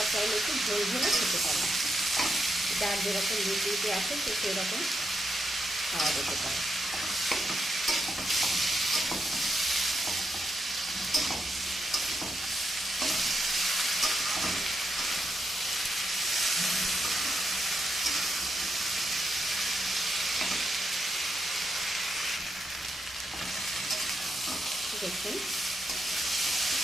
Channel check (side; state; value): both; normal; correlation 0.82